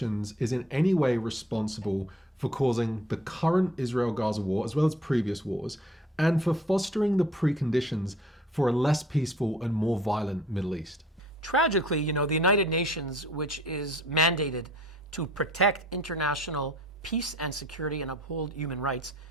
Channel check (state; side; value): normal; both; correlation 0.54